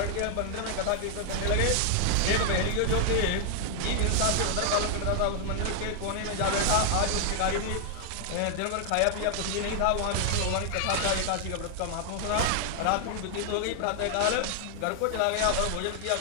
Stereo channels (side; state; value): both; different; correlation 0.00